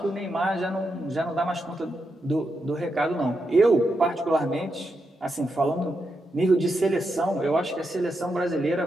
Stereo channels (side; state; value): both; normal; correlation 0.85